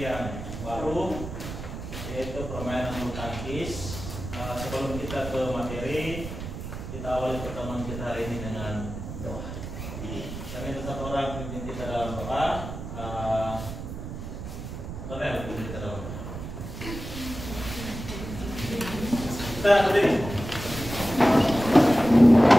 baru, yaitu permainan bulu tangkis. Sebelum kita ke materi, kita awali pertemuan kita hari ini dengan doa. Kami tetap orang pimpin kita dalam doa. Cornel, pimpin kita dalam doa. Kita berdiri.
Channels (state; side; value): noise; right; rumble, 9 dB below the sound